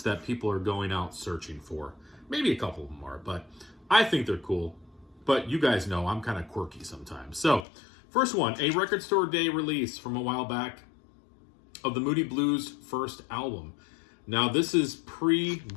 that people are going out searching for. Maybe a couple of them are, but I think they're cool. But you guys know I'm kind of quirky sometimes. So, first one, a Record Store Day release from a while back of the Moody Blues' first album. Now, this is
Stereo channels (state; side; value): drops out; right; at 7.7 s